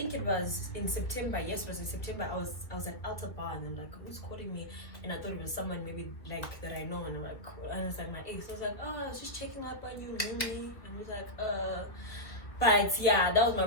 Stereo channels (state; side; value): late; right; 1.8 ms